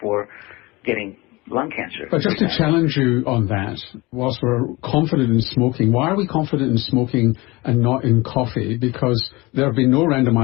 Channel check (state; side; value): quieter; right; 22.4 dB